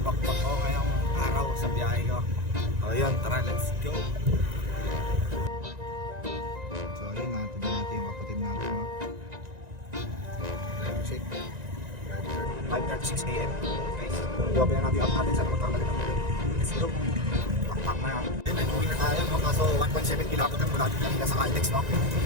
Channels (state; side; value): late; left; 1.9 ms